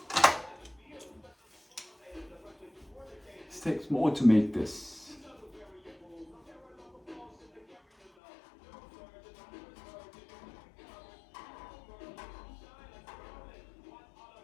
it takes more to make this.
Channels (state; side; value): drops out; right; at 8.1 s